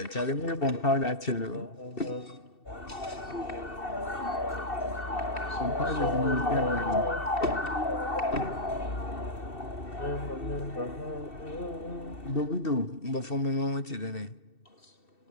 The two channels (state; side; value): late; right; 2.7 ms